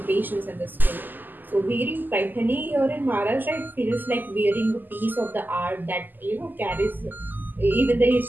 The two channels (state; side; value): late; left; 0.088 ms